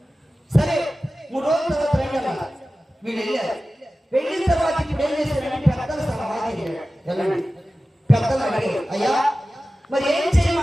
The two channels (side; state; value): both; normal; correlation 0.95